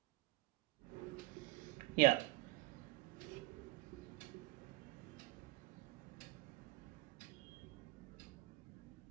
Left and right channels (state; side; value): quieter; left; 21.4 dB